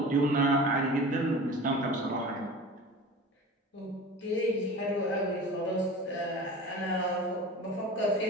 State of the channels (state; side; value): normal; both; correlation 0.36